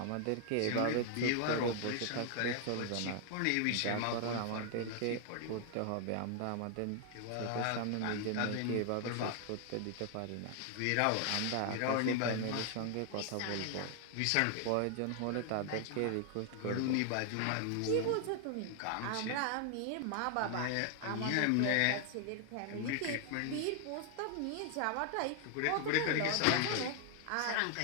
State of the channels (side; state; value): both; different; correlation 0.00